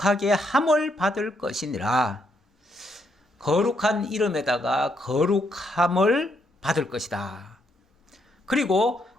함을 받을 것이니라. 거룩한 이름에다가 거룩함을 받을 것이다. 그리고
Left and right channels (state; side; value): normal; both; correlation 0.75